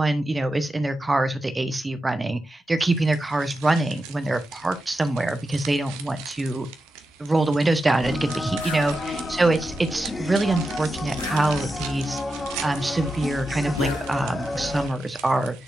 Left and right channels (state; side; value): normal; both; correlation 0.89